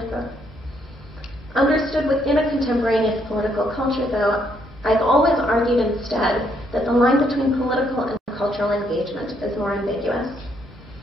quote. Understood within a contemporaneous political culture, though, I've always argued instead that the line between political and cultural engagement is more ambiguous.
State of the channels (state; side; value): normal; both; correlation 0.72